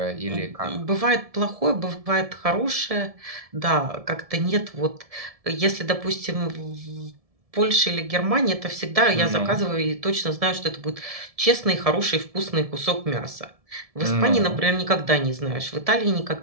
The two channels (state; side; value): late; left; 1.7 ms